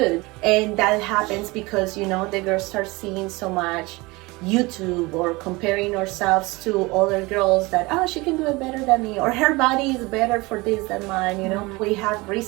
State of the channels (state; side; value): quieter; left; 23.5 dB